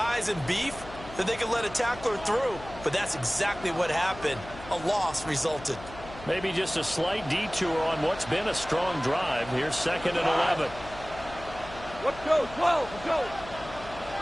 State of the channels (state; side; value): noise; left; hum, 15 dB below the sound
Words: and beef that they could let a tackler through. But that's exactly what happened. A loss resulted. Maybe just a slight detour on what's been a strong drive. Here's 2nd and 11. Let's go, 12, let's go.